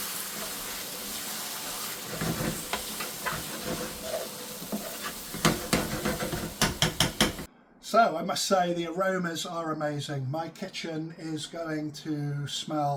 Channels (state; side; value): identical; both; correlation 1.00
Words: So I must say the aromas are amazing. My kitchen is going to